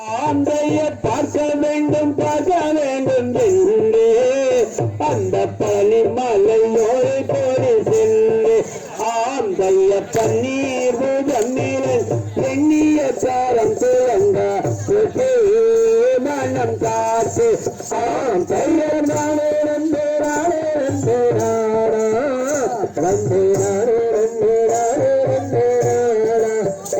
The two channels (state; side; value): identical; both; correlation 1.00